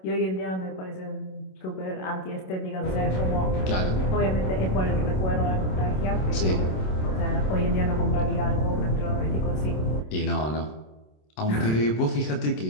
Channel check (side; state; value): right; late; 27 ms